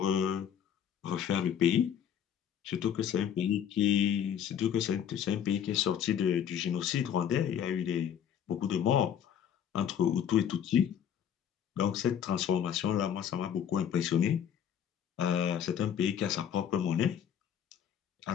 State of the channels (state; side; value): quieter; right; 9.0 dB